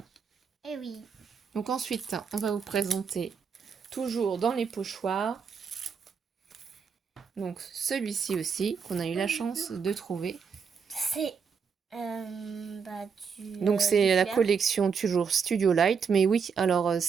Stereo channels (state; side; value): quieter; left; 6.1 dB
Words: Eh oui. Donc ensuite, on va vous présenter toujours dans les pochoirs. Donc celui-ci aussi, qu'on a eu la chance de trouver. C'est... Donc c'est la collection toujours Studio Light, mais oui, alors